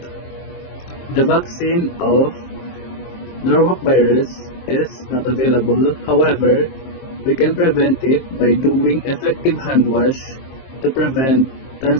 The vaccine of Norwalk virus is not available. However, we can prevent it by doing effective hand wash to prevent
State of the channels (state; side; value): late; right; 23 ms